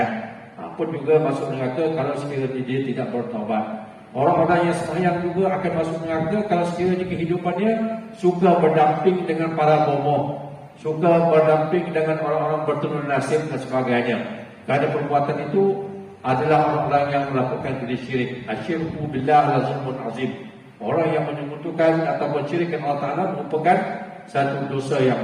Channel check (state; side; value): identical; both; correlation 1.00